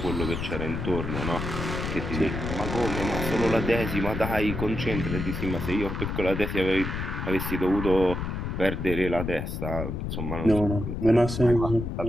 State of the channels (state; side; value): noise; left; rumble, 4 dB below the sound